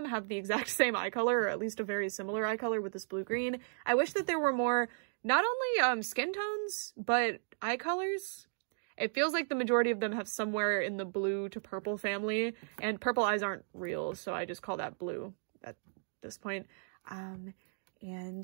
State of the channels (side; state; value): left; silent; digital silence